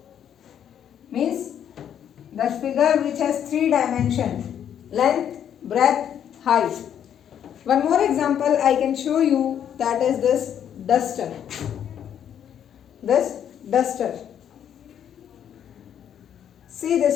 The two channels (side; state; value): right; quieter; 9.3 dB